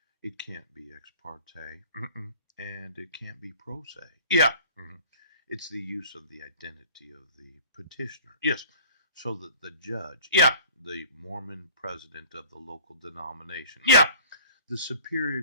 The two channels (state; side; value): inverted; both; correlation -0.47